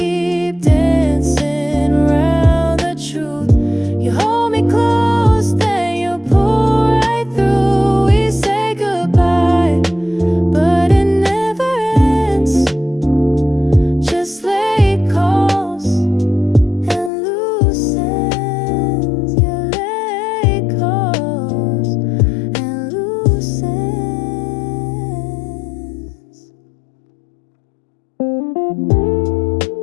dancing around the truth? You hold me close, then you pull right through. We say goodbye, but it never ends. Just late calls and loose ends. Yeah, late calls and loose ends.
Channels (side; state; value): right; drops out; at 17.1 s